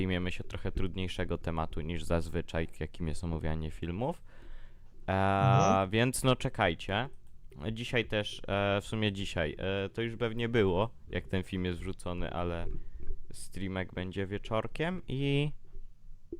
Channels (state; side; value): identical; both; correlation 1.00